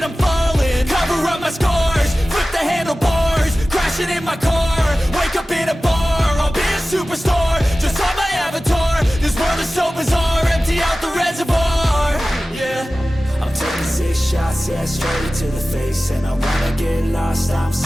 I'm falling. Cover up my scars, flip the handlebars, crashing in my car, wake up in a bar. I'll be a superstar, just on my avatar. This world is so bizarre, empty out the reservoir. Yeah, I'm taking 6 shots, yeah, straight to the face. And I wanna get lost, I'm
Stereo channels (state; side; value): normal; both; correlation 0.96